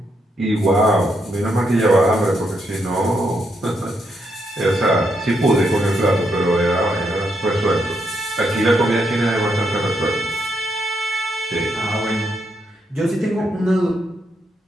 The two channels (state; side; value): normal; both; correlation 0.79